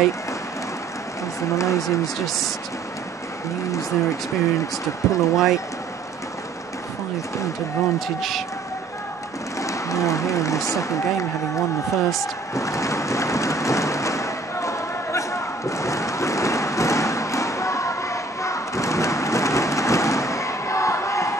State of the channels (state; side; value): quieter; left; 3.6 dB